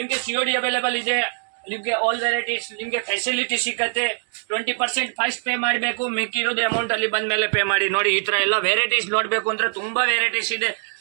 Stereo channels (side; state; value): left; silent; digital silence